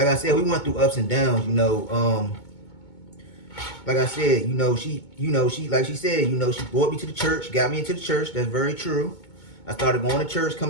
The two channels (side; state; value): right; late; 2.2 ms